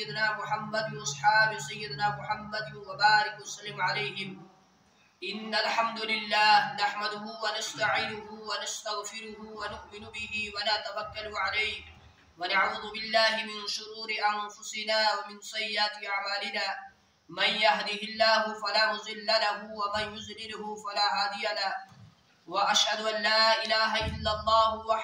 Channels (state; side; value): identical; both; correlation 1.00